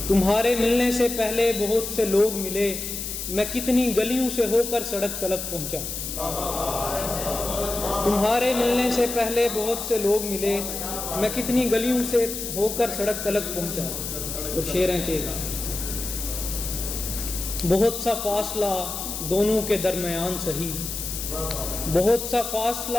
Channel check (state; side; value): noise; left; hiss, 6 dB below the sound